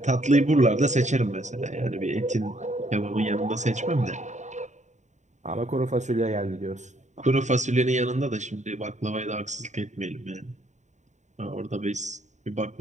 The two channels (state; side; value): late; left; 0.34 ms